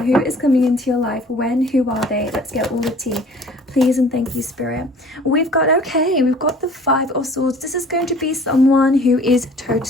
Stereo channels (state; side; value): normal; both; correlation 0.50